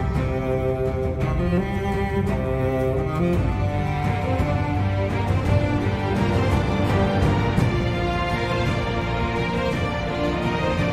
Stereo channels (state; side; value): identical; both; correlation 1.00